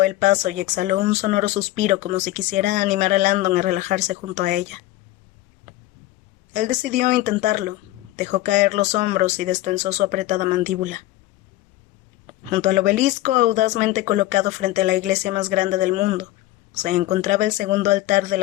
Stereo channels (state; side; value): quieter; right; 16.2 dB